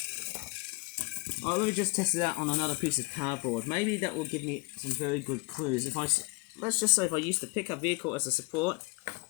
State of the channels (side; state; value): right; quieter; 28.4 dB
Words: let me just test it out on another piece of cardboard. Maybe that will give me some very good clues. Let's just say if I use the pickup vehicle as a support,